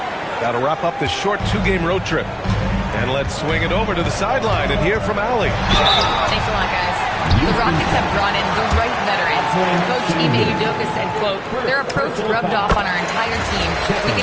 Got to wrap up this short 2-game road trip. And let's swing it over to the sideline and hear from Allie. Thanks a lot, guys. The Rockets have brought in the right veterans. Coach Ime Udoka said, quote, their approach rubbed off on our entire team. We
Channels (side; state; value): both; identical; correlation 1.00